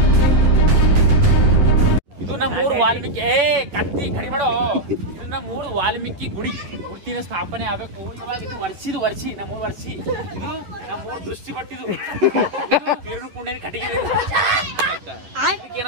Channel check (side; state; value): left; late; 10 ms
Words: ಇದು ನಮ್ಮೂರು ವಾಲ್ಮೀಕಿ ಕತ್ತಿ ಕಡಿ ಮಾಡೋ. ಇದು ನಮ್ಮೂರು ವಾಲ್ಮೀಕಿ ಗುಡಿ ಮೂರ್ತಿನ ಸ್ಥಾಪನೆ ಆಗ್ಬೇಕು. ಇವಾಗ ಇದು ವರ್ಷಿ ನಮ್ಮೂರು ವರ್ಷಿ. ಇದು ನಮ್ಮೂರು ದೃಷ್ಟಿ ಪಟ್ಟಿದು ಕಿರಣ್ ಕುಂಡೇನ ಕಟ್ಟಿಗೆ